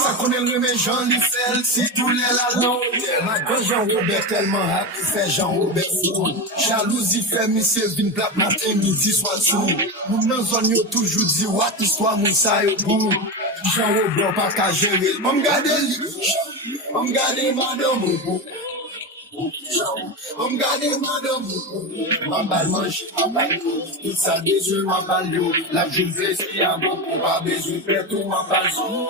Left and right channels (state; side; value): normal; both; correlation 0.18